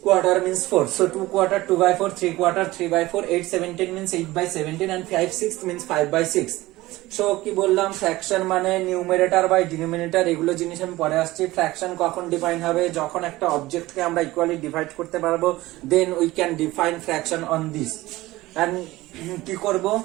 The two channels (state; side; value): quieter; left; 18.4 dB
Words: Quarter means 4. So 2/4 2/4, 3/4 3/4, 8/17 means 8/17 and 5/6 means 5/6. So কি বললাম, ফ্র্যাকশন মানে নিউমারেটর বাই ডিনোমিনেটর, এগুলো জিনিস আমি পরে আসছি। ফ্র্যাকশন কখন ডিফাইন হবে, যখন একটা অবজেক্টকে আমরা ইকুয়ালি ডিভাইড করতে পারবো, then we can define fraction on this. And কি করব,